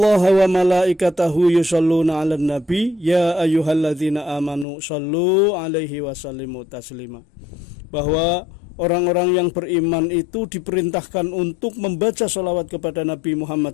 wa malaikatahu yusholluna 'alan nabi ya ayyuhalladzina amanu shollu 'alaihi wa sallimu taslima. Bahwa orang-orang yang beriman itu diperintahkan untuk membaca sholawat kepada Nabi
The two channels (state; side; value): drops out; right; at 4.7 s